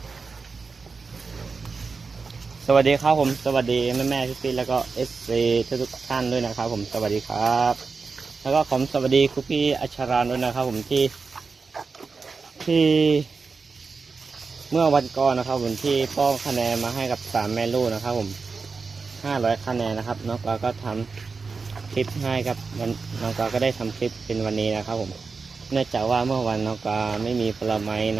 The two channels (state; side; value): quieter; left; 4.6 dB